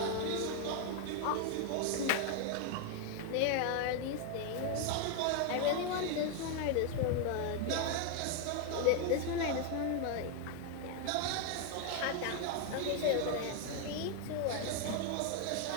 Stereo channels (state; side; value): different; both; correlation 0.01